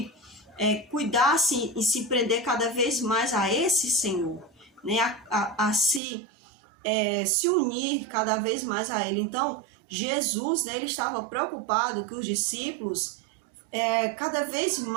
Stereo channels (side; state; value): left; drops out; at 6.0 s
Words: cuidassem e se prender cada vez mais a esse Senhor, né? a se unir cada vez mais a Ele. Então, Jesus, né, ele estava preocupado que os discípulos cada vez